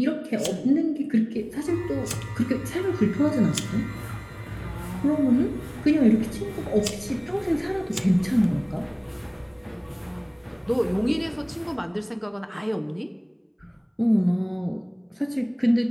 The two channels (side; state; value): both; identical; correlation 1.00